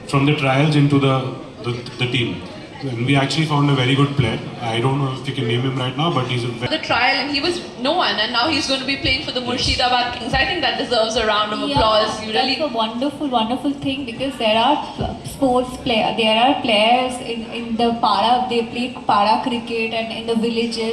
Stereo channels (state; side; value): identical; both; correlation 1.00